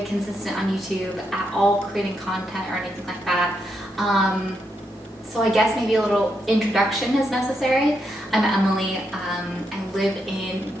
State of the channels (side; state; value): both; normal; correlation 0.81